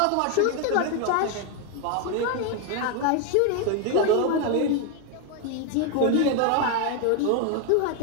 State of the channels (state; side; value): different; both; correlation 0.01